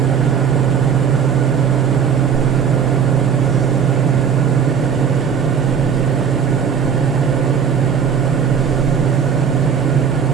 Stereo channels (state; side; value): quieter; left; 7.3 dB